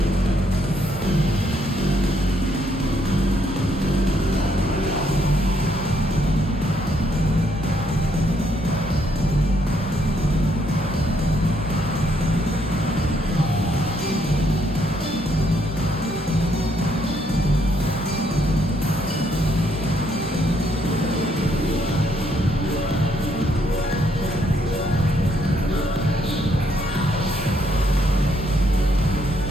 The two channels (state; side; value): normal; both; correlation 0.72